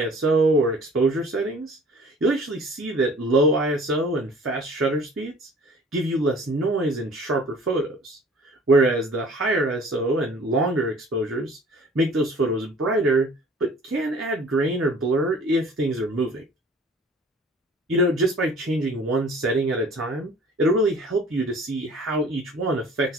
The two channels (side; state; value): both; normal; correlation 0.49